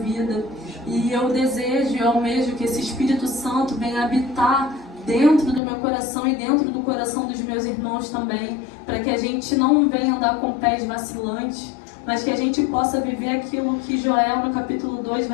E eu desejo e almejo que esse Espírito Santo venha habitar dentro do meu coração e dentro do coração dos meus irmãos também, para que a gente não venha andar com pés vacilantes, mas que a gente possa viver aquilo que Joel no capítulo 2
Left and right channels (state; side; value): drops out; right; at 5.6 s